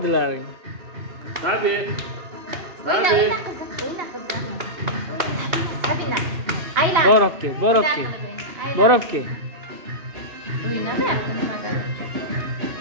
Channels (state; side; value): late; left; 2.8 ms